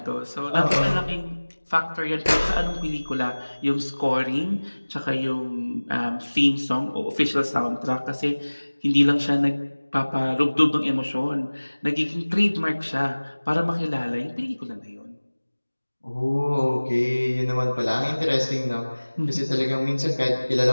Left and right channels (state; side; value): inverted; both; correlation -1.00